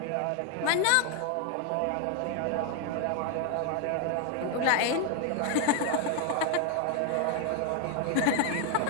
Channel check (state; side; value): different; both; correlation 0.01